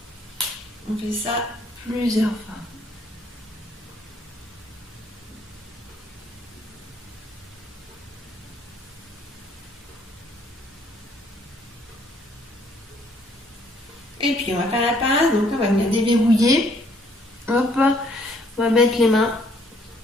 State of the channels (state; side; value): normal; both; correlation 0.64